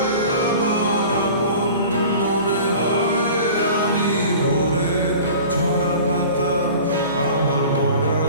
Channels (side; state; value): both; inverted; correlation -0.42